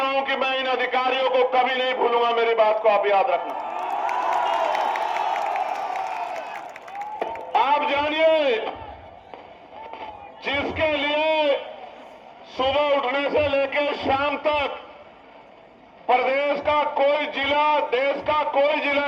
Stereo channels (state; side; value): identical; both; correlation 1.00